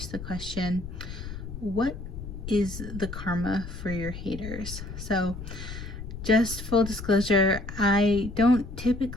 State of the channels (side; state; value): left; noise; rumble, 9 dB below the sound